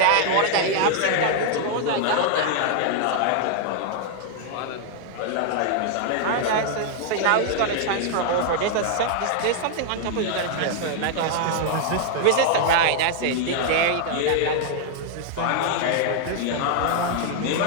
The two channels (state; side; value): different; both; correlation 0.00